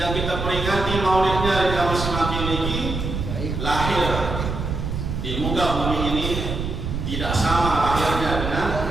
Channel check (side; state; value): right; noise; rumble, 3 dB below the sound